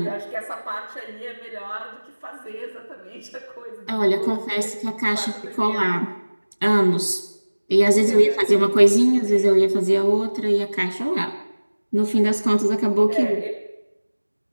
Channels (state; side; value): inverted; both; correlation -1.00